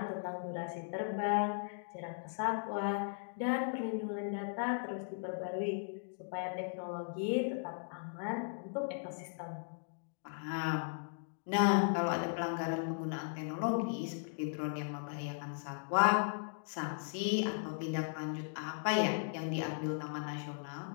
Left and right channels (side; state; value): right; silent; digital silence